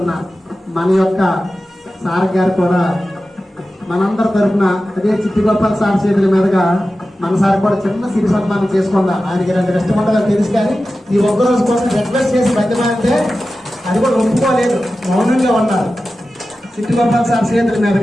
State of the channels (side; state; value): both; normal; correlation 0.94